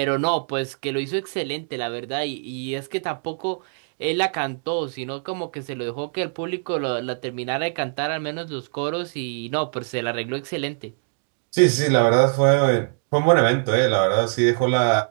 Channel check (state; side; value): silent; left; digital silence